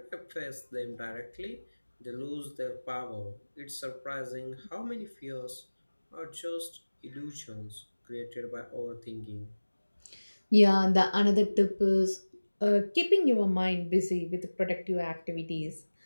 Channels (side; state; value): both; inverted; correlation -1.00